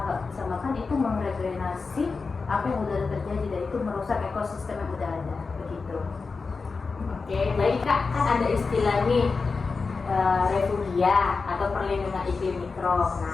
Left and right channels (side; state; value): right; quieter; 4.5 dB